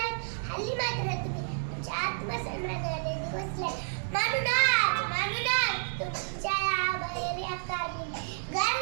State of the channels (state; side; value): silent; left; digital silence